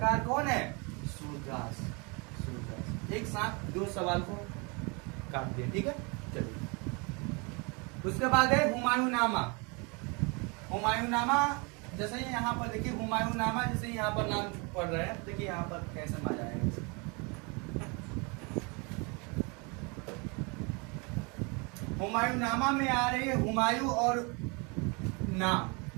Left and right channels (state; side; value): quieter; left; 30.7 dB